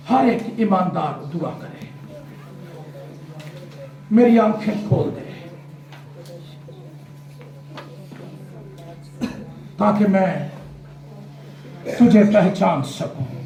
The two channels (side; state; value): both; identical; correlation 1.00